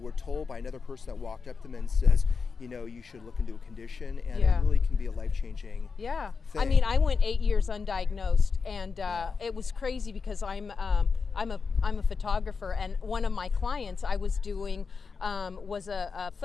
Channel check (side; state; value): right; quieter; 5.1 dB